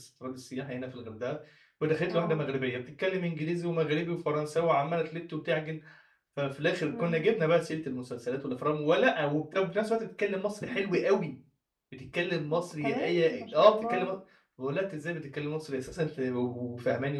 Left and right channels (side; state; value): both; identical; correlation 1.00